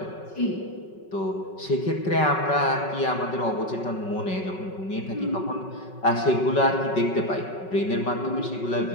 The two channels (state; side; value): late; right; 5.4 ms